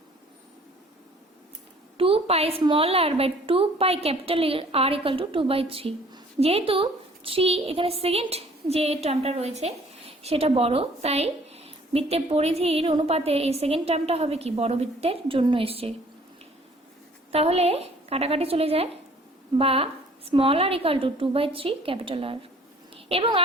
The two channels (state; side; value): normal; both; correlation 0.55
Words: 2 পাই r/2 পাই R = 2/3। যেহেতু 3 এখানে সেকেন্ড যে টার্মটা রয়েছে সেটা বড়, তাই বৃত্তের পরিধির অনুপাতে এই সেকেন্ড টার্মটা হবে কি, বড় বৃত্তের জন্য এসছে। তাহলে কাটাকাটি চলে যায়, বা r = 2/3 R। এবং